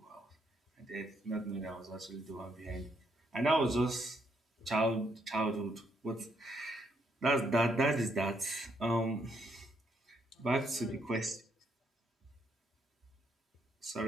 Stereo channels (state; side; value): normal; both; correlation 0.74